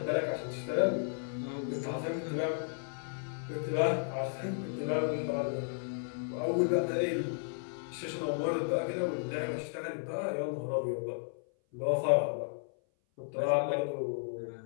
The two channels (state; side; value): silent; right; 55 dB below the other